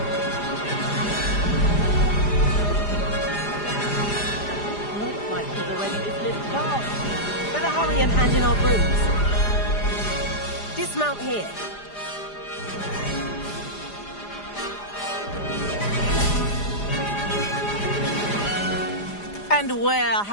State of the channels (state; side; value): late; right; 4.9 ms